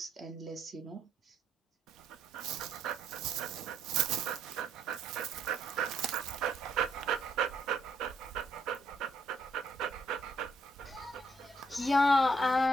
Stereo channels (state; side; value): normal; both; correlation 0.71